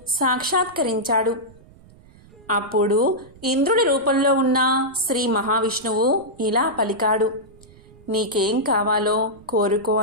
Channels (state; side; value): noise; right; rumble, 25 dB below the sound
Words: సాక్షాత్కరించాడు. అప్పుడు ఇంద్రుడి రూపంలో ఉన్న శ్రీ మహావిష్ణువు ఇలా పలికాడు: నీకేం కావాలో కోరుకో